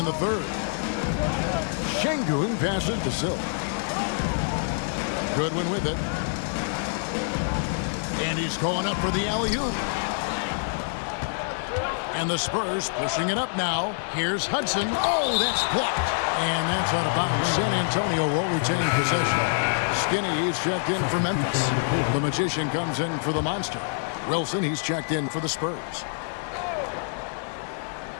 the third. Şengün passes to Silk. Goodwin with it. And he's going up for the alley-oop. And the Spurs pushing it up now. Here's Hudson. Oh, that's blocked. And that's out of bounds. San Antonio will retain possession. Skinny, he's checked in for Memphis. The Magician comes in for the Monster. Wilson, he's checked in for the Spurs.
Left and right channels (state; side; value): silent; right; digital silence